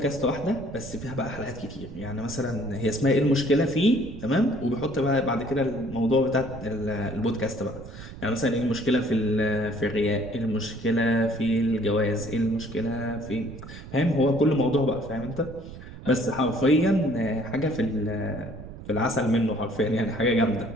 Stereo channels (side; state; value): right; noise; rumble, 14 dB below the sound